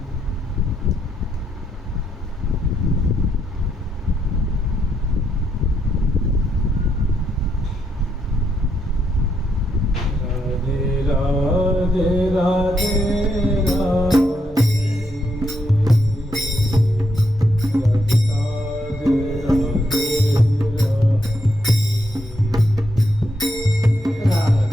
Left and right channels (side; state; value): both; normal; correlation 0.78